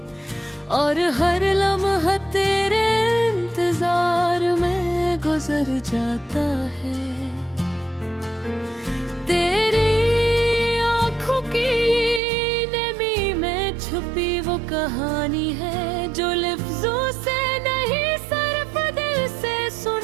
और हर लम्हा तेरे इंतजार में गुजर जाता है। तेरी आँखों की नमी में छुपी वो कहानी है, जो लफ्जों से नहीं सिर्फ दिल से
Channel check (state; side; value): drops out; left; at 12.2 s